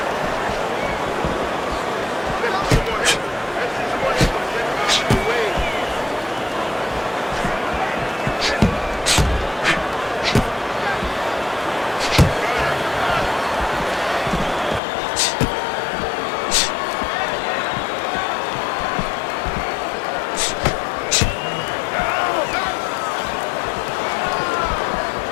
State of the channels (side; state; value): right; drops out; at 14.8 s